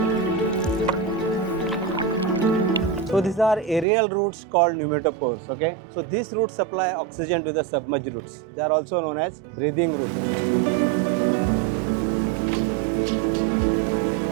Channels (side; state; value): left; drops out; at 3.9 s